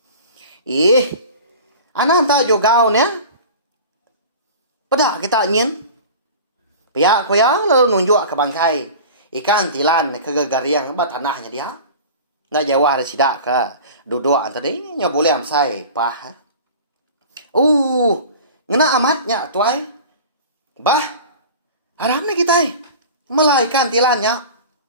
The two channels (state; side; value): inverted; both; correlation -0.37